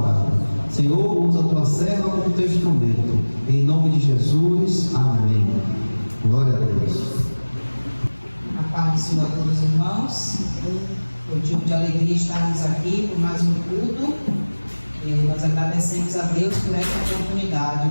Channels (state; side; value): inverted; both; correlation -1.00